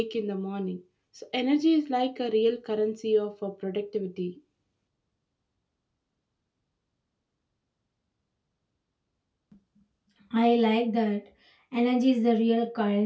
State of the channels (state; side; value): identical; both; correlation 1.00